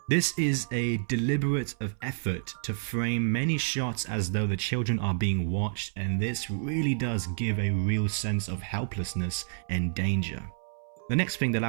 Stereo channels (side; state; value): left; silent; 58 dB below the other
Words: This is a deliberate effort to frame many shots as though the children are being watched, and this really does give a real sense of helplessness and danger. The next thing that I